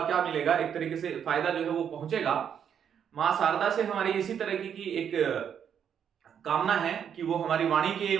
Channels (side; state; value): left; quieter; 8.3 dB